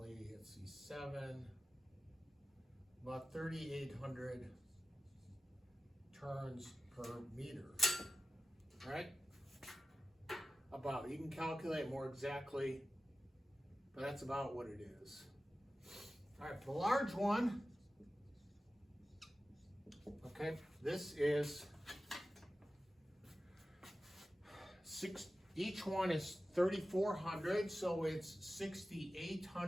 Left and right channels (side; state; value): both; normal; correlation 0.94